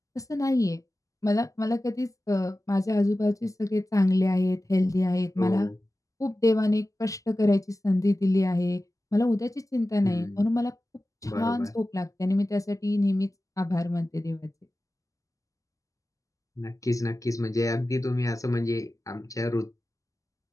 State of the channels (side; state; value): right; late; 0.16 ms